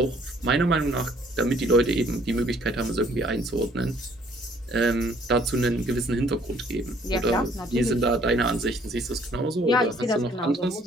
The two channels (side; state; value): both; normal; correlation 0.61